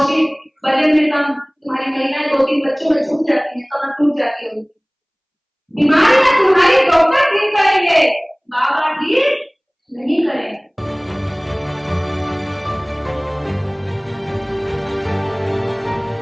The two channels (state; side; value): identical; both; correlation 1.00